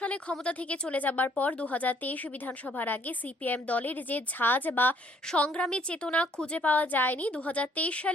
সালে ক্ষমতা থেকে চলে যাবার পর 2023 বিধানসভার আগে সিপিএম দলের যে ঝাঁজ বা সংগ্রামী চেতনা খুঁজে পাওয়া যায়নি, 2023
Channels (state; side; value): normal; both; correlation 0.64